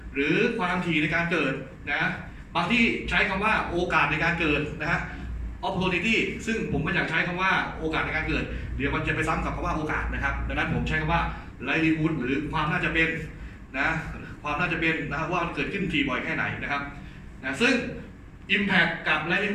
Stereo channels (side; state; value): both; identical; correlation 1.00